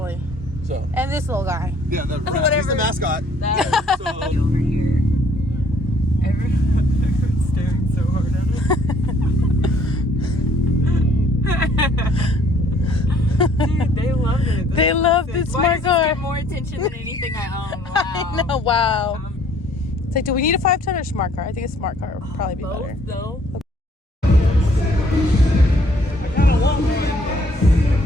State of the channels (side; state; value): both; normal; correlation 0.61